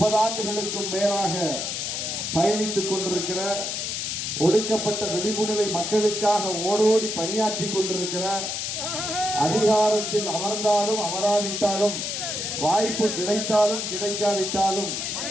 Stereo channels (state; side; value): noise; left; hiss, 3 dB below the sound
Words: ஆண்டுகளுக்கும் மேலாக பயணித்துக் கொண்டிருக்கிற, ஒடுக்கப்பட்ட விளிம்புநிலை மக்களுக்காக ஓடோடி பணியாற்றி கொண்டிருக்கிற, அதிகாரத்தில் அமர்ந்தாலும் அமராவிட்டாலும், வாய்ப்பு கிடைத்தாலும் கிடைக்காவிட்டாலும்